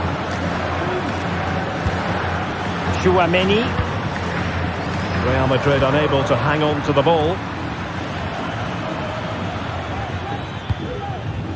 Chouameni. Real Madrid unable to hang on to the ball.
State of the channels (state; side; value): identical; both; correlation 1.00